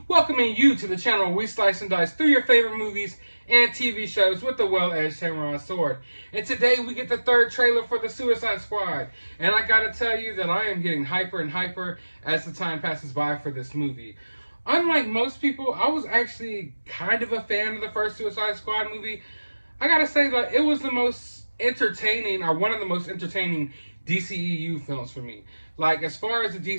welcoming you to the channel where we slice and dice through your favorite movies and TV shows with a well-edged samurai sword. And today we get the third trailer for The Suicide Squad. And I gotta tell you that I am getting hyper and hyper as the time passes by for this movie. Unlike most people, I was actually kind of a fan of the first Suicide Squad movie. I gotta say that it was the most entertaining, or one of the most entertaining DCEU films for me. Like, as far as the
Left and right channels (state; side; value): inverted; both; correlation -1.00